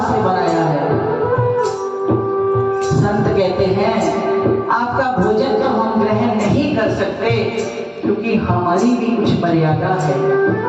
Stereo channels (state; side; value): identical; both; correlation 1.00